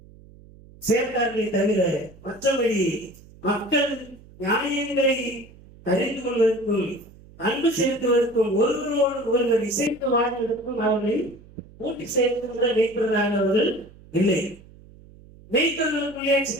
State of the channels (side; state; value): right; noise; hum, 23 dB below the sound